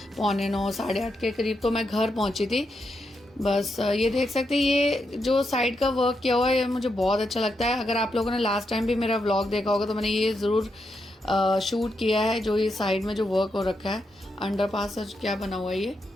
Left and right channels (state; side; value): normal; both; correlation 0.83